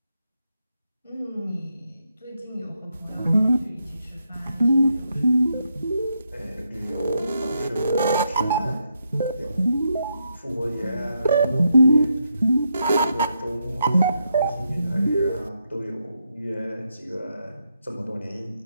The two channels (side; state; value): both; inverted; correlation -0.81